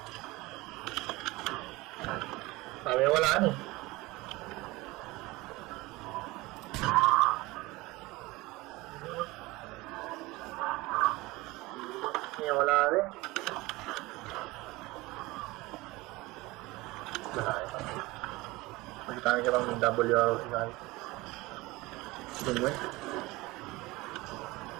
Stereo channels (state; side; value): quieter; left; 21.2 dB